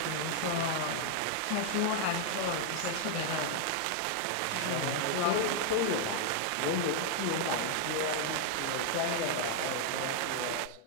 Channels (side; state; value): both; different; correlation 0.00